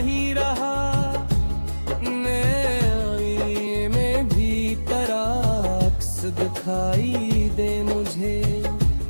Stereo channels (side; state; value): both; inverted; correlation -1.00